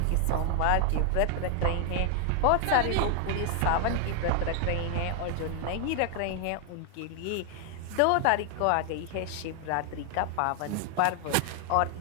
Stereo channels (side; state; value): both; different; correlation 0.00